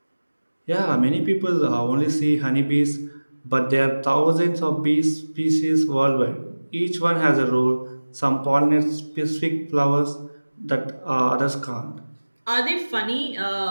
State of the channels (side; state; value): both; inverted; correlation -1.00